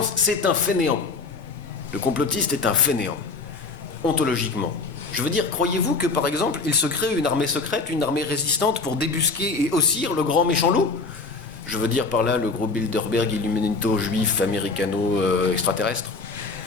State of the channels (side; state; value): right; quieter; 4.0 dB